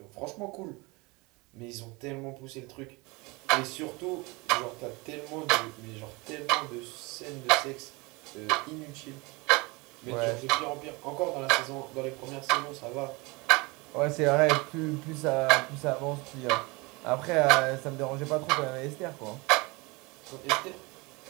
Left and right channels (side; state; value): left; quieter; 25.6 dB